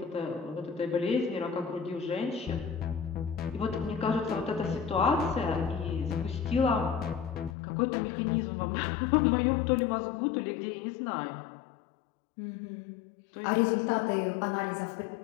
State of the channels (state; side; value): drops out; right; at 7.6 s